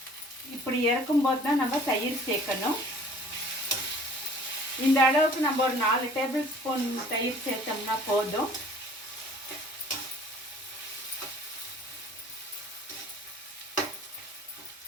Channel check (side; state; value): both; normal; correlation 0.51